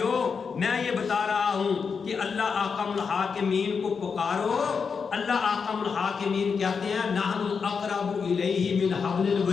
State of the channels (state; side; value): quieter; right; 5.7 dB